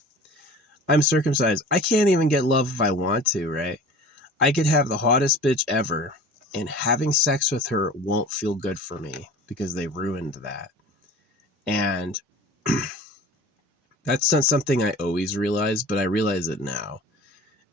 I'm circumcised. I can't even get love if I want to, right? I could have the hottest bitch ever, and having sex with her won't feel good for me because they ruined that. And that's not something I always realized, but I realize it now.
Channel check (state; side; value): normal; both; correlation 0.41